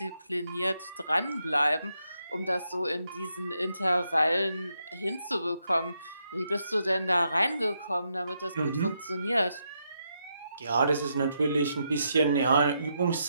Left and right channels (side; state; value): both; inverted; correlation -0.81